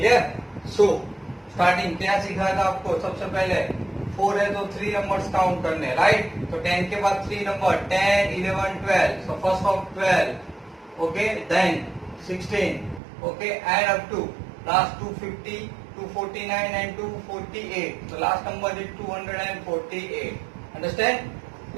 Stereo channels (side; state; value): left; drops out; at 13.0 s